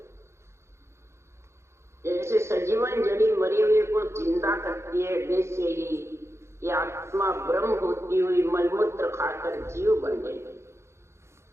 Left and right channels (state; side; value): late; left; 0.13 ms